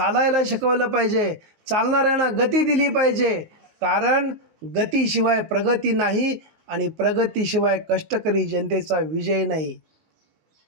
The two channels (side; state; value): left; late; 19 ms